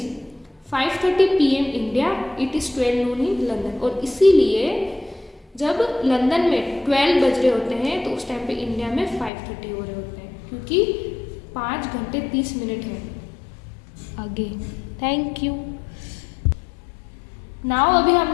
5:30 PM India, it is 12 Noon in London, और इसीलिए जब लंदन में 12 बज रहे होते हैं तो उस टाइम पे इंडिया में 5:30 हो रहे होते हैं, क्योंकि 5 घंटे 30 मिनट है आगे। Thank you. नाउ अभी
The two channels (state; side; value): drops out; right; at 9.3 s